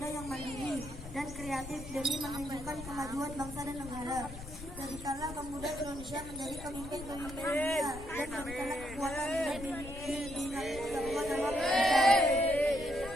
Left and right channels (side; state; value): left; noise; rumble, 12 dB below the sound